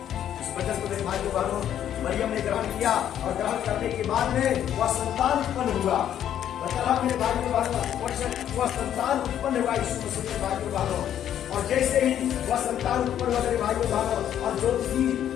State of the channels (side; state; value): right; quieter; 10.4 dB